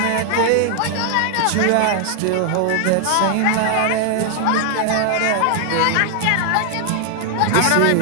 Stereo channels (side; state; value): both; different; correlation 0.00